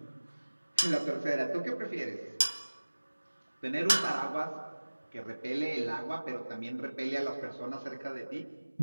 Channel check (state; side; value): inverted; both; correlation -1.00